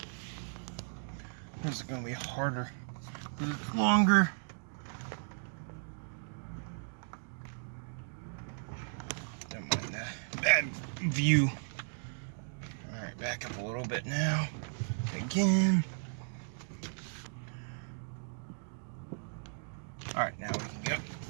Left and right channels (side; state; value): left; silent; digital silence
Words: This is going to be harder. This is longer. Don't mind that bad view. Alright, back up a little bit now. Again. Alright, now we can go.